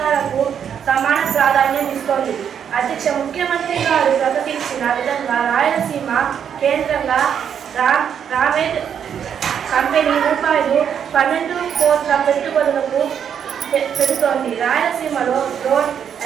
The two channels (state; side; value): quieter; left; 8.2 dB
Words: సమాన ప్రాధాన్యం ఇస్తోంది. అధ్యక్ష, ముఖ్యమంత్రి గారు ప్రకటించిన విధంగా రాయలసీమ కేంద్రంగా రామేడ్ కంపెనీ ₹12 కోట్ల పెట్టుబడులకు పెడుతోంది. రాయలసీమలో రోడ్,